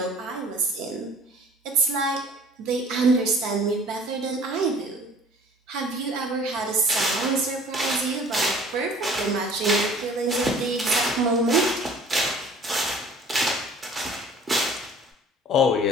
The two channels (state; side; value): normal; both; correlation 0.49